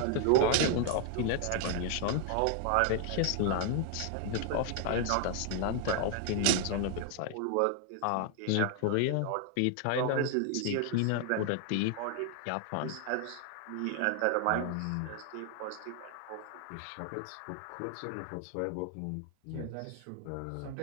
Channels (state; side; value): different; both; correlation 0.00